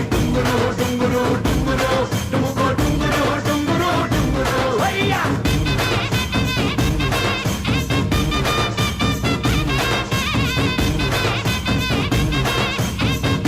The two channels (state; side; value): identical; both; correlation 1.00